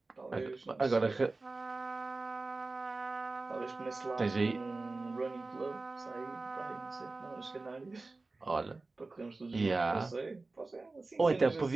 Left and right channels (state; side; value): quieter; left; 3.5 dB